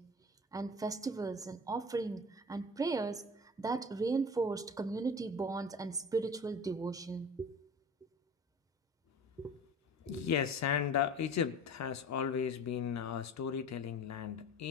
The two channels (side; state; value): both; normal; correlation 0.39